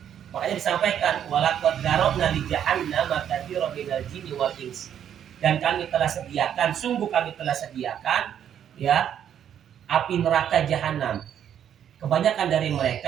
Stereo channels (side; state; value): left; quieter; 9.5 dB